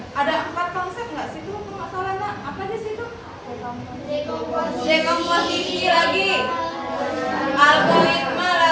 Ada 4 konsep nggak sih itu? Nggak salah, Nak. Apa di situ? Dekomposisi lagi. Algoritma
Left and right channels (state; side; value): identical; both; correlation 1.00